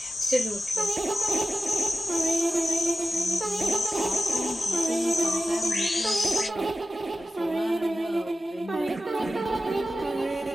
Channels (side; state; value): both; normal; correlation 0.93